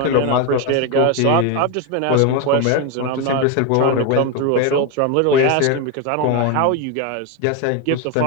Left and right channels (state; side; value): different; both; correlation 0.02